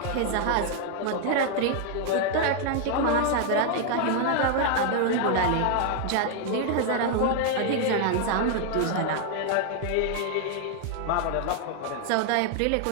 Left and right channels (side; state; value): both; different; correlation 0.00